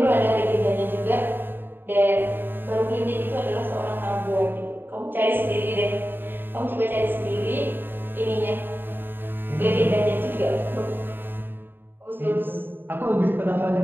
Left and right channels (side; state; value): left; late; 0.096 ms